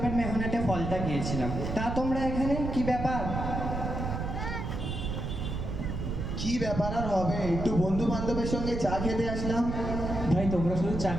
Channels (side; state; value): right; noise; rumble, 4 dB below the sound